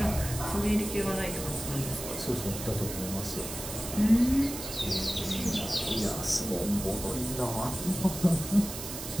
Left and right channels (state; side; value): noise; right; hiss, 8 dB below the sound